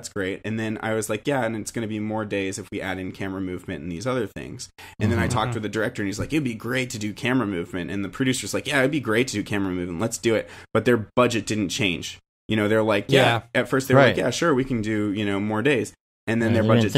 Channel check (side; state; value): both; identical; correlation 1.00